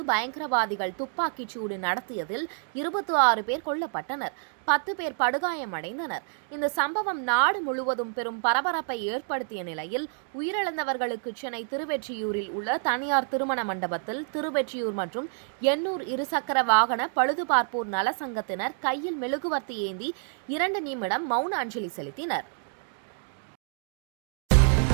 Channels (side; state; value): left; silent; 59 dB below the other